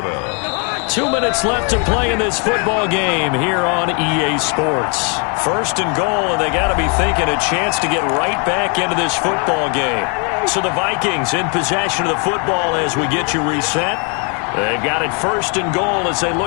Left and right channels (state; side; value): quieter; right; 36.7 dB